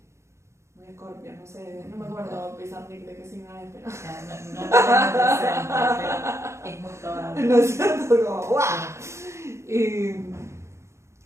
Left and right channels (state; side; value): late; left; 0.14 ms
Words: Muy Escorpio, no sé, no me acuerdo Pizarnik de qué signo es, pero... No lo tengo presente, pero es muy probable. ¿No es cierto? Como, ¡guau!